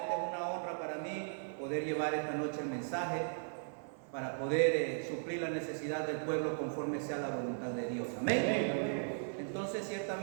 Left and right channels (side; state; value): left; silent; 53 dB below the other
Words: es una honra para mí poder llevar esta noche el mensaje para poder suplir la necesidad del pueblo conforme sea la voluntad de Dios. Amén. Entonces,